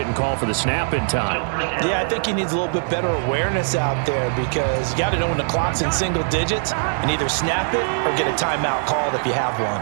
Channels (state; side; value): silent; left; 65 dB below the other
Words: call for the snap in time. Yeah, I think he needs a little bit better awareness out there because you got to know when the clock's in single digits and either snap it or get a timeout called if you have one.